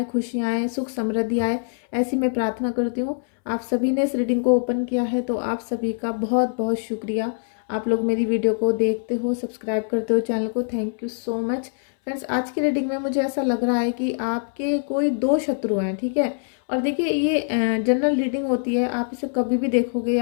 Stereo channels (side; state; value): right; silent; 62 dB below the other